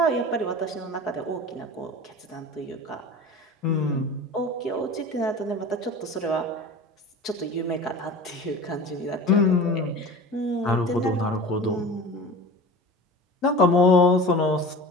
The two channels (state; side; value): normal; both; correlation 0.36